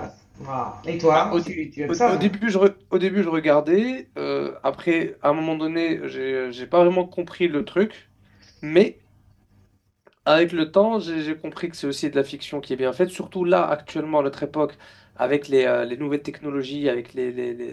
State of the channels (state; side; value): identical; both; correlation 1.00